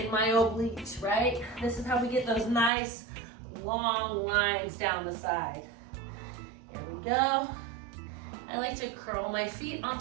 my obliques, right? This is how we get those nice long lines down the side. Here we go. I like to curl my feet on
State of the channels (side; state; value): left; drops out; at 2.7 s